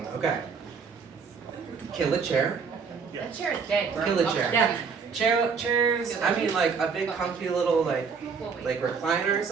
Okay. Kill a chair. That chair is dead, bro. Kill a chair. Yeah. Chairs. I mean, like a big, comfy little like recliner or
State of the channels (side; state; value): left; quieter; 5.7 dB